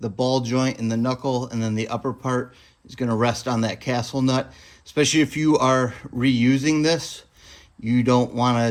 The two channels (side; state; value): both; identical; correlation 1.00